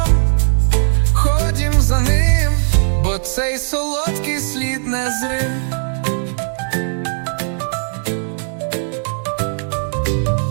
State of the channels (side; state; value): left; silent; digital silence